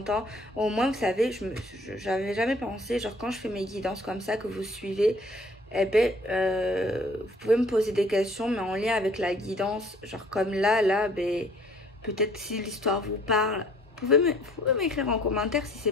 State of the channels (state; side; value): normal; both; correlation 0.57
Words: temps. Au moins, vous savez, j'avais jamais pensé, genre quand je fais mes guidances comme ça que vous suivez, eh ben, vous pouvez me poser des questions, mais en lien avec la guidance. Genre comme là, ben, peut-être si l'histoire vous parle, vous pouvez m'écrire en commentaire si